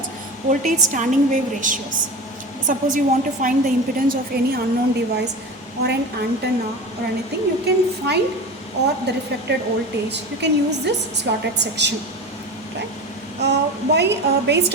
voltage standing wave ratios. Suppose you want to find the impedance of any unknown device or an antenna or anything, you can find, or the reflected voltage, you can use this slotted section, right? Based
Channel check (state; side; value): normal; both; correlation 0.29